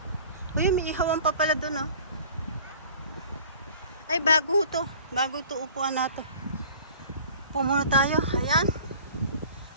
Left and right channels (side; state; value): both; inverted; correlation -0.46